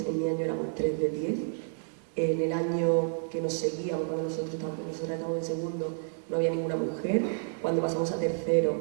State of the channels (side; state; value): left; silent; 58 dB below the other